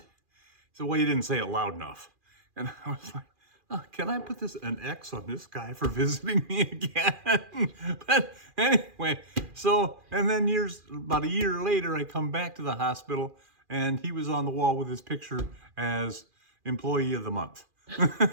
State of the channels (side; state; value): left; late; 2.4 ms